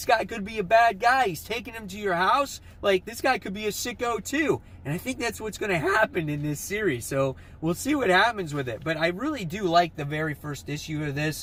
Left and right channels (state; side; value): identical; both; correlation 1.00